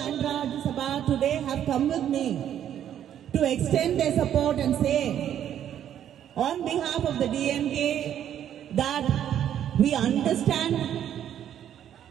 and Rajya Sabha today have come with me to extend their support and say on behalf of the DMK that we understand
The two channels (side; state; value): left; quieter; 10.2 dB